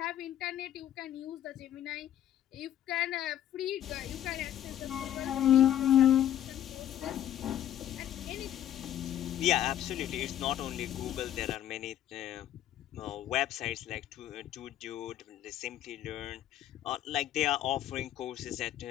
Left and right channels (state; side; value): quieter; right; 11.6 dB